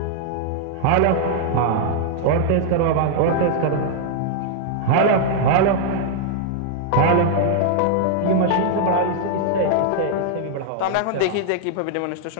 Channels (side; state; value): both; different; correlation -0.01